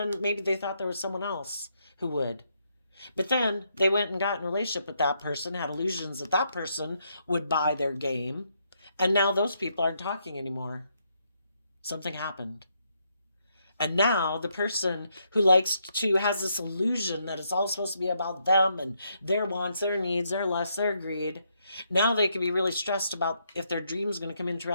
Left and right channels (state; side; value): inverted; both; correlation -0.77